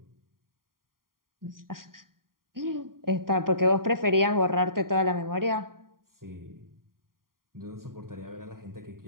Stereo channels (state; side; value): late; left; 0.91 ms